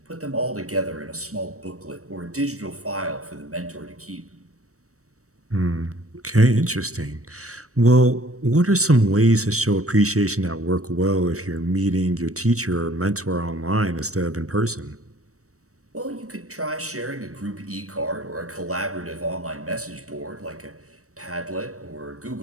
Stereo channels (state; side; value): late; left; 0.65 ms